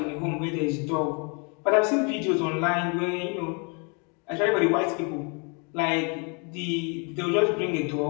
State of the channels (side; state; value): right; quieter; 35.0 dB